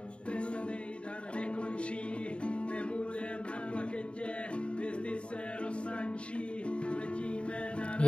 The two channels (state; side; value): late; right; 0.058 ms